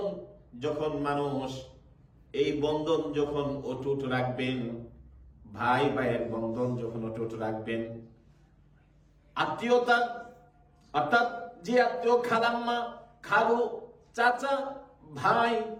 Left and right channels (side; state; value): both; identical; correlation 1.00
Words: যখন মানুষ এই বন্ধন যখন অটুট রাখবেন, ভাই ভাইয়ের বন্ধন যখন অটুট রাখবেন, আত্মীয়তা অর্থাৎ যে আত্মীয়, খালাম্মা, খালু, চাচা, ভাই,